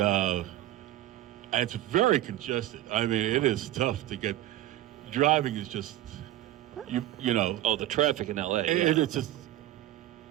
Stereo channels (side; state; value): left; quieter; 14.5 dB